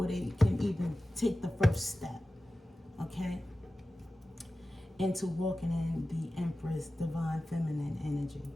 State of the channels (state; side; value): normal; both; correlation 0.95